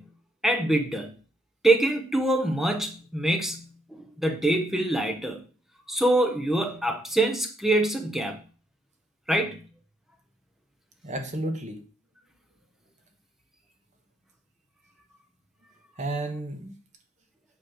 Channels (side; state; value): both; normal; correlation 0.75